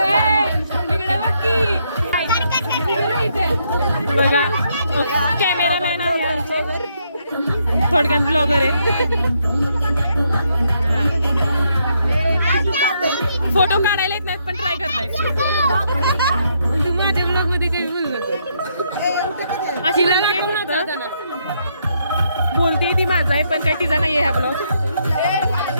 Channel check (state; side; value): inverted; both; correlation -0.75